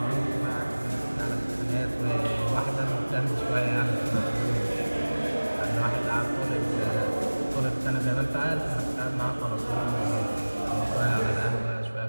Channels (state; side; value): inverted; both; correlation -1.00